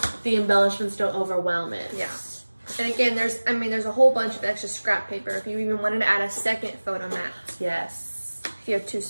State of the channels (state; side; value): inverted; both; correlation -1.00